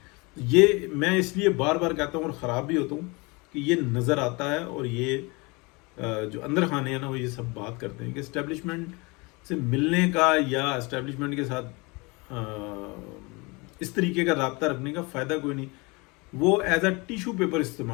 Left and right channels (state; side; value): quieter; right; 27.0 dB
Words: یہ میں اس لیے بار بار کہتا ہوں اور خراب بھی ہوتا ہوں کہ یہ نظر آتا ہے, اور یہ جو اندر خانے ہیں نا وہ یہ سب بات کرتے ہیں کہ اسٹیبلشمنٹ سے ملنے کا یا اسٹیبلشمنٹ کے ساتھ اس طریقے کا رابطہ رکھنے کا فائدہ کوئی نہیں. وہ ایز اے ٹیشو پیپر